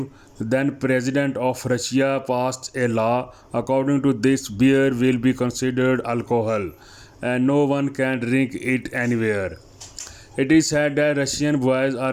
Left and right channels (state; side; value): identical; both; correlation 1.00